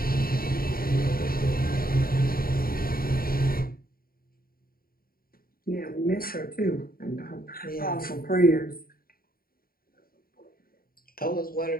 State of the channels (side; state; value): right; late; 0.43 ms